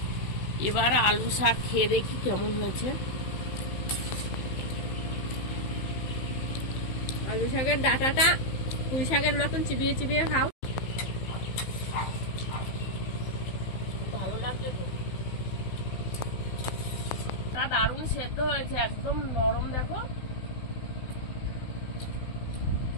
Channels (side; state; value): right; late; 16 ms